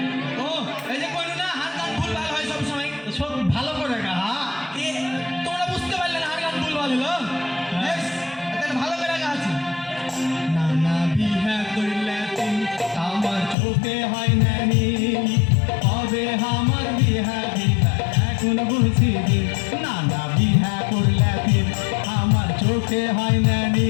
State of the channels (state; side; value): drops out; right; at 13.6 s